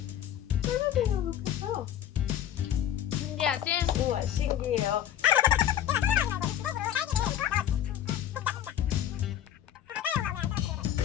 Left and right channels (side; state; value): right; quieter; 10.7 dB